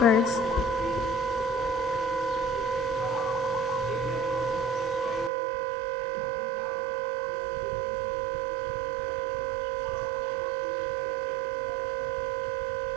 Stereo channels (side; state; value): left; drops out; at 5.3 s